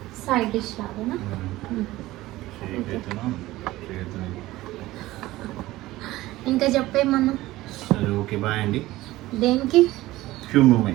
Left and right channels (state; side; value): quieter; left; 17.4 dB